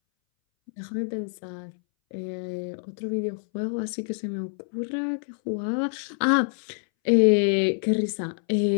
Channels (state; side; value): silent; right; 61 dB below the other